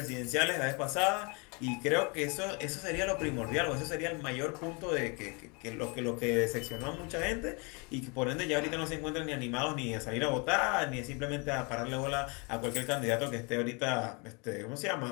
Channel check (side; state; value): right; quieter; 31.5 dB